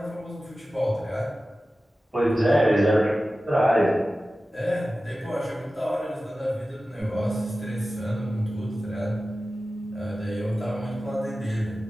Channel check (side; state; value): both; normal; correlation 0.95